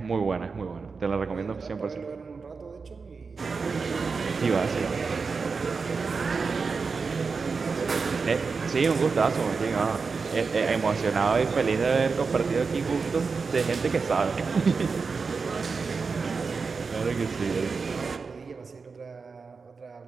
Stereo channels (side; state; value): left; quieter; 4.8 dB